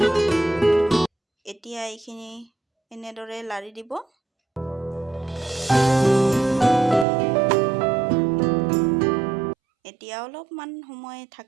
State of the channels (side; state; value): left; drops out; at 7.1 s